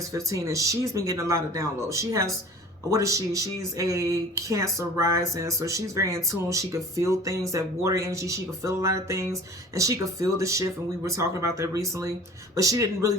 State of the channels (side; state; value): both; normal; correlation 0.44